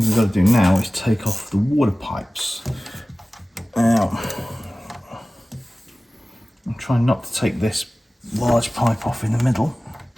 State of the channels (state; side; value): normal; both; correlation 0.97